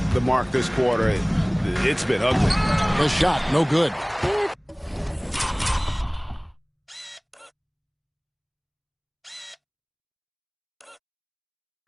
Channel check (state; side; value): identical; both; correlation 1.00